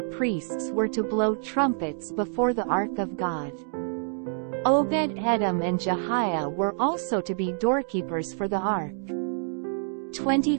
priests were to blow trumpets before the ark of God. Obed-Edom and Jehiah were also to be doorkeepers for the ark.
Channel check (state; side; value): silent; left; digital silence